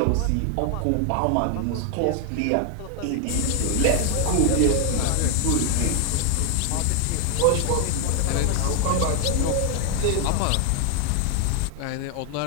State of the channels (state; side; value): different; both; correlation 0.01